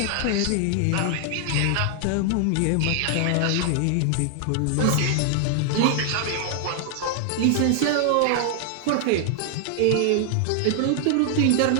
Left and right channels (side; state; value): both; different; correlation 0.00